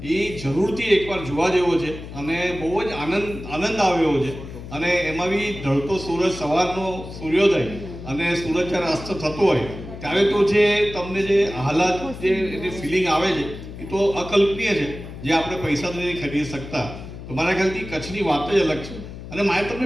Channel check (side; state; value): left; noise; hum, 12 dB below the sound